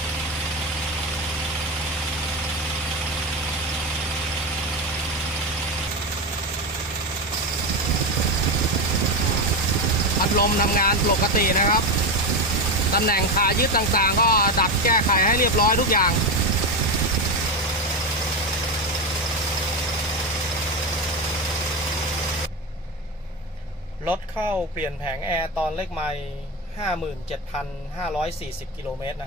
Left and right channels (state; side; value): normal; both; correlation 0.16